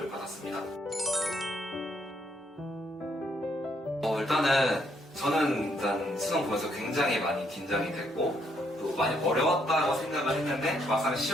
받았습니다. 저는 일단 수능 보면서 굉장히 많이 긴장이 됐고 또 많이 어려웠다고 생각을 했는데 막상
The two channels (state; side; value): normal; both; correlation 0.73